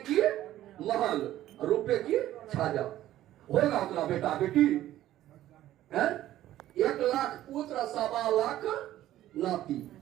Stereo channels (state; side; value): quieter; left; 13.6 dB